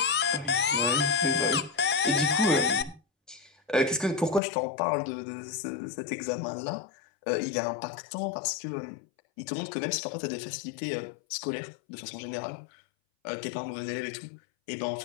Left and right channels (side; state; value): right; drops out; at 4.4 s